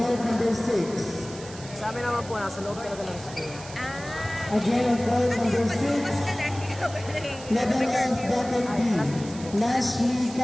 number 6. Sa amin naman po, nasa loob talaga ng school. Again, on court number 6. Level F bracket B. Nashley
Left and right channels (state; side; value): noise; right; hiss, 16 dB below the sound